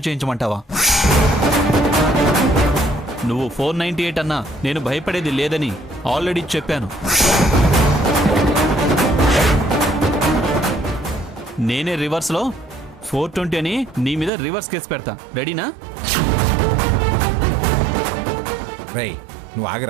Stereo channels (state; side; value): drops out; left; at 14.3 s